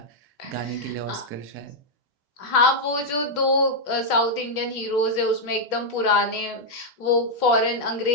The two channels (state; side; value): late; right; 3.3 ms